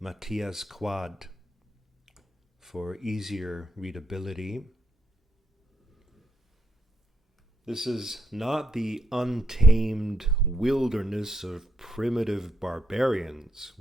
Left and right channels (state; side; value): normal; both; correlation 0.78